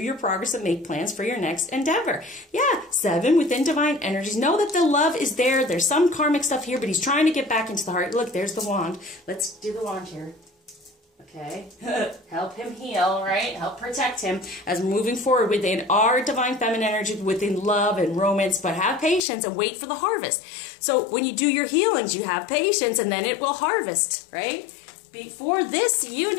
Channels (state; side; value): drops out; right; at 19.2 s